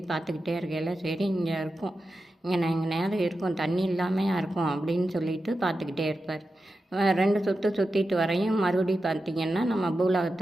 பார்த்துக்கிட்டே இருக்கையில் சரி இங்கே இருக்கும், இங்கே நேரம் இருக்கும், தண்ணி இல்லாமையா இருக்கும் அப்படின்னு சொல்லிட்டு பார்த்துக்கிட்டே இருப்பார். 2 சுற்று சுற்றிட்டு வரையும் மறுபடியும் பார்த்திங்கன்னா நம்ம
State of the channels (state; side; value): normal; both; correlation 0.91